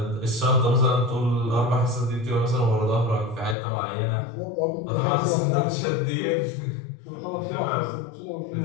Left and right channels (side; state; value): right; drops out; at 3.6 s